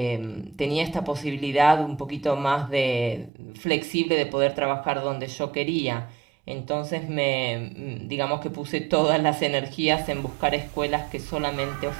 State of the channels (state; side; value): drops out; left; at 3.3 s